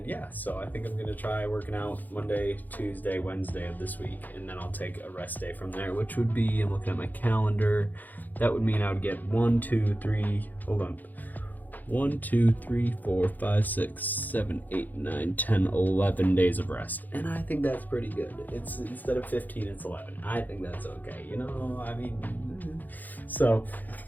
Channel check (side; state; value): right; late; 0.084 ms